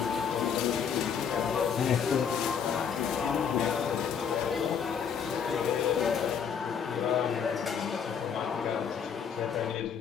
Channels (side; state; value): right; quieter; 7.2 dB